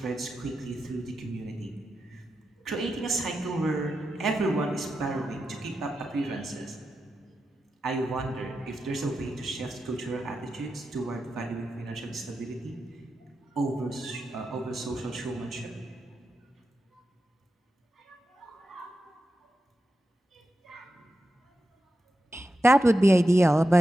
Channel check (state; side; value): normal; both; correlation 0.90